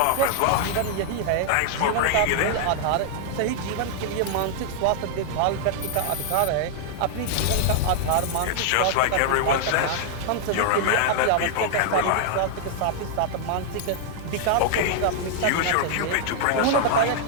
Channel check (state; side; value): different; both; correlation -0.01